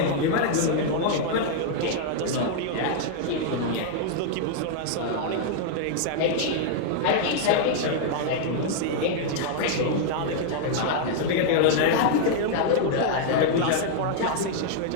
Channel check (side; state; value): both; different; correlation 0.00